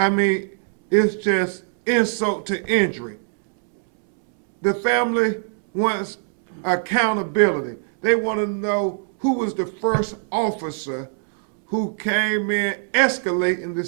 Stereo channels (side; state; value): left; silent; 64 dB below the other